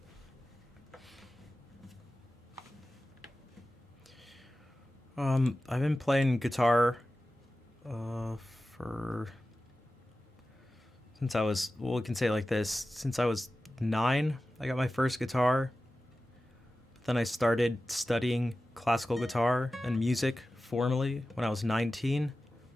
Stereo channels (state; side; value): normal; both; correlation 0.94